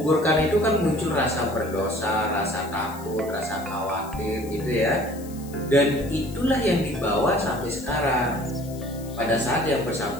itu kan muncul rasa berdosa, rasa takut, rasa khawatir gitu ya. Dan itulah yang dibawa sampai sekarang. Pada saat yang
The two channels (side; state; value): left; noise; hiss, 19 dB below the sound